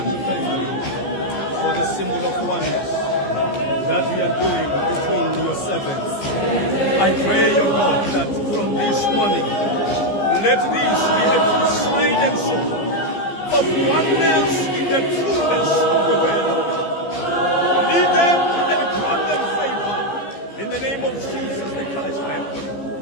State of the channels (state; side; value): late; right; 15 ms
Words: to thank you for the symbol of oneness that we are doing between your servants. I pray, O God, that from this morning, let this be a true sign and symbol of oneness in the trueness of the word of God. Lead them and grant them favor. In the name of Jesus the Christ, I have prayed.